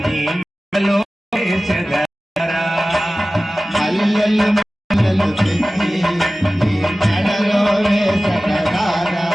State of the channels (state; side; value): normal; both; correlation 0.97